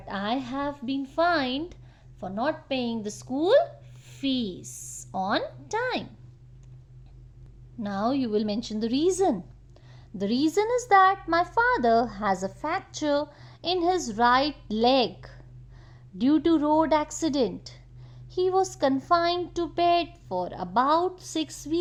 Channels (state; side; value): identical; both; correlation 1.00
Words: I have been fined for not paying the school fees on time. Now you will mention the reason. The reason is that my father has a fracture in his right leg due to road accident. He was confined to bed for about 6